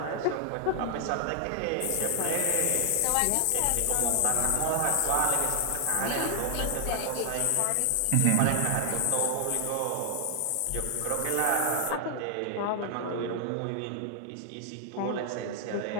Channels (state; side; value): different; both; correlation 0.00